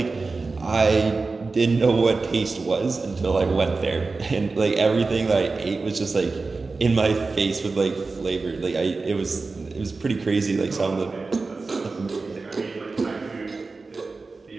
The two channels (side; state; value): left; quieter; 3.9 dB